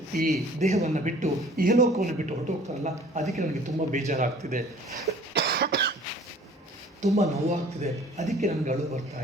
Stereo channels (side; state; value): both; normal; correlation 0.51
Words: ಈ ದೇಹವನ್ನು ಬಿಟ್ಟು, ಇಹಲೋಕವನ್ನು ಬಿಟ್ಟು ಹೊರಟೋಗ್ತಾರಲ್ಲ, ಅದಕ್ಕೆ ನನಗೆ ತುಂಬ ಬೇಜಾರಾಗ್ತಿದೆ, ತುಂಬ ನೋವಾಗ್ತಿದೆ, ಅದಕ್ಕೆ ನನಗೆ ಅಳು ಬರ್ತಾ